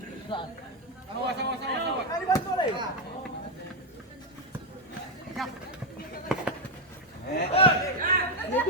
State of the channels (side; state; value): both; normal; correlation 0.03